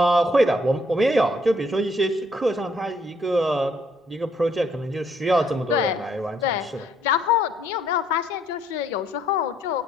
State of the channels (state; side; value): normal; both; correlation 0.68